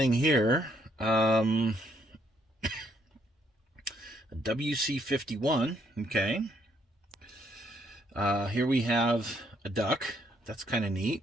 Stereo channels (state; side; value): normal; both; correlation 0.71